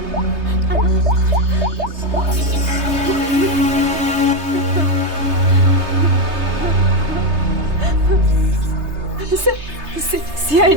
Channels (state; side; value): late; left; 3.3 ms